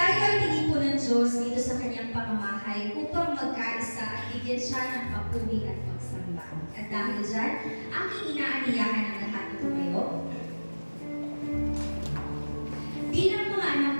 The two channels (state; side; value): inverted; both; correlation -1.00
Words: ay tinipo ng Diyos dito sa kanyang pamamahay upang magkaisa at bigyan siya ng papuri at pagsamba. At dahil dyan, aking inaaniyahan ang lahat ng tumayo. Bilang mga anak